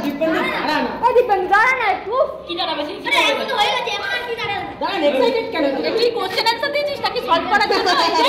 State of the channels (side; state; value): both; identical; correlation 1.00